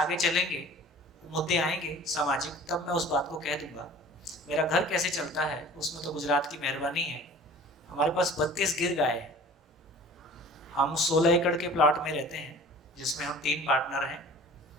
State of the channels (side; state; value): both; normal; correlation 0.44